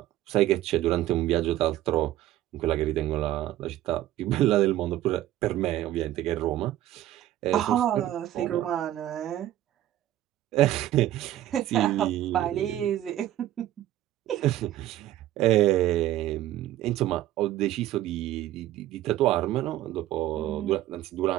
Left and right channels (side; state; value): left; quieter; 13.6 dB